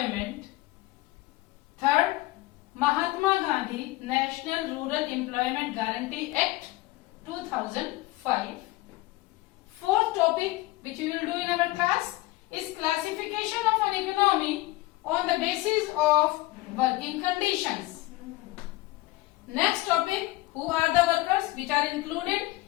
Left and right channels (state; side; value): quieter; right; 19.6 dB